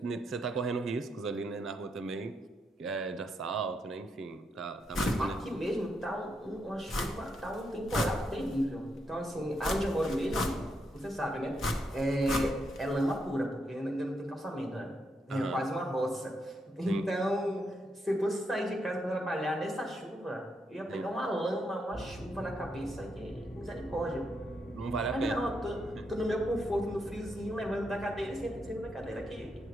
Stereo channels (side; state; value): both; normal; correlation 0.80